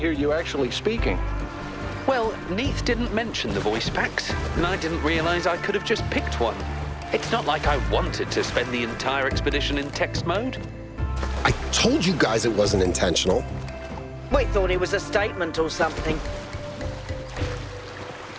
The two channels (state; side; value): identical; both; correlation 1.00